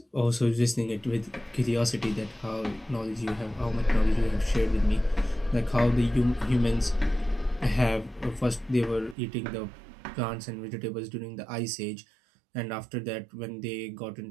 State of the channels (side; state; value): left; drops out; at 9.2 s